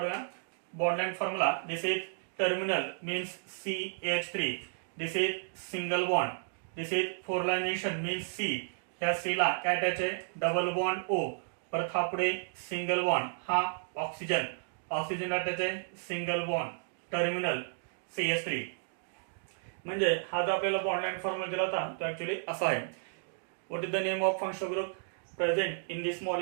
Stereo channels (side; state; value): left; silent; digital silence